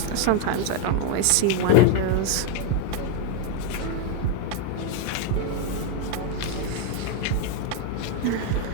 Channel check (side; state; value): both; different; correlation 0.01